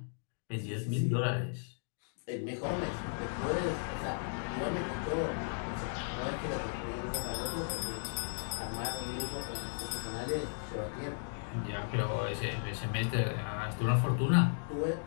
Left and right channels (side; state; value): right; silent; digital silence